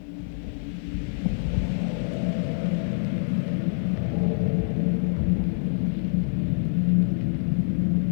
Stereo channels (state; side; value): silent; right; 58 dB below the other